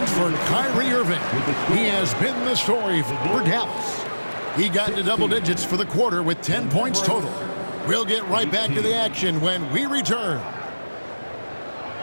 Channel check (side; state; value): both; inverted; correlation -1.00